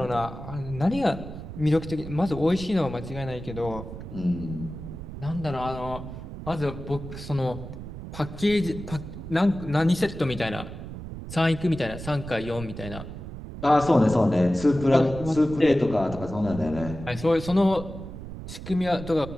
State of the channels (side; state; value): right; noise; rumble, 10 dB below the sound